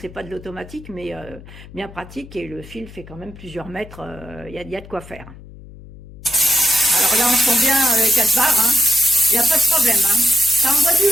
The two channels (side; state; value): left; noise; hum, 18 dB below the sound